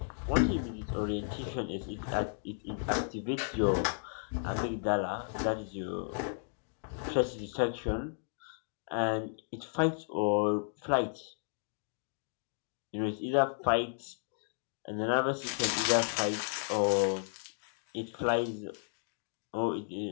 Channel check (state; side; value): silent; right; digital silence